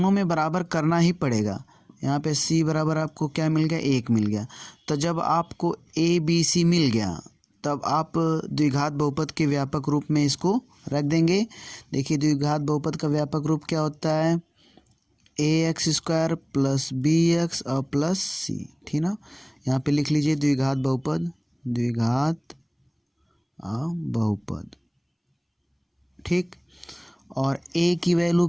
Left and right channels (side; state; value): both; identical; correlation 1.00